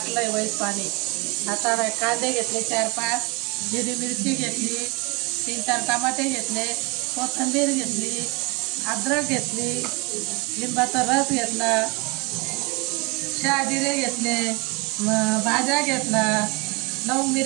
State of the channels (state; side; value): quieter; left; 28.8 dB